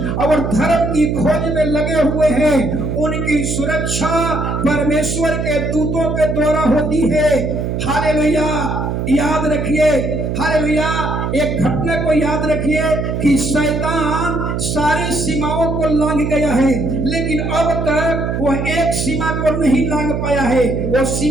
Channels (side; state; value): right; noise; hum, 2 dB below the sound